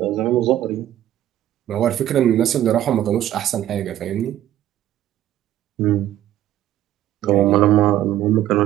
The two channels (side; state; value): left; quieter; 12.5 dB